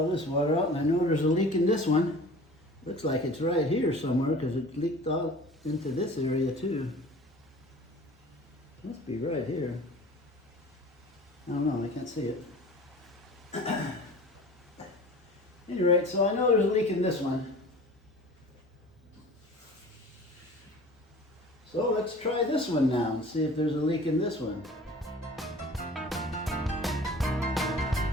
this water out, and I know there's a leak in this one. Looks like it's right here somewhere because it leaked out into this area too. Must be right here. I don't know, I can't see it. Anyway, so I know there's a leak in this one. So let's try this one now and see if there's a leak in this one.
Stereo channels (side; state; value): both; normal; correlation 0.43